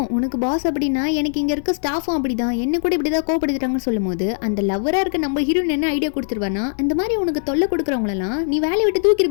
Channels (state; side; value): silent; right; digital silence